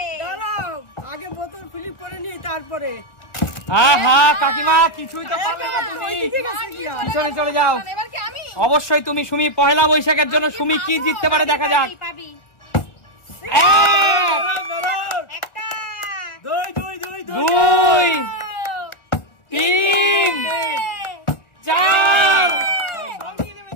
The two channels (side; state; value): right; late; 1.5 ms